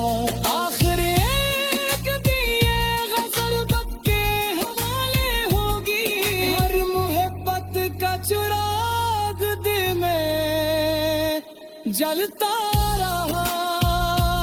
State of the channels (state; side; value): identical; both; correlation 1.00